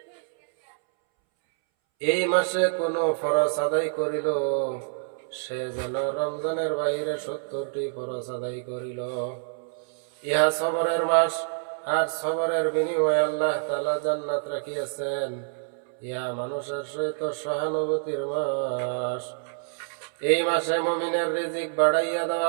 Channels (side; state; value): left; silent; 60 dB below the other